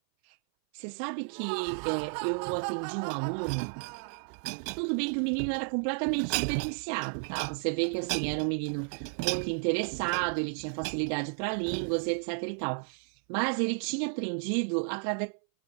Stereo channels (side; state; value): left; silent; 56 dB below the other